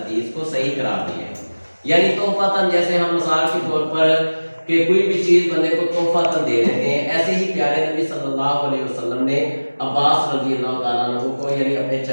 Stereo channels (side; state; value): both; inverted; correlation -1.00